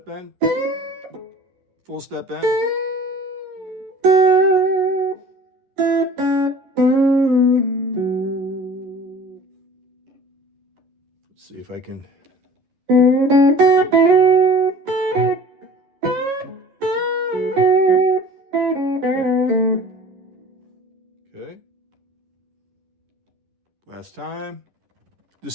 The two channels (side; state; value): left; late; 11 ms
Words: bend. Full step bend. Let's see if I can. Okay. Last time.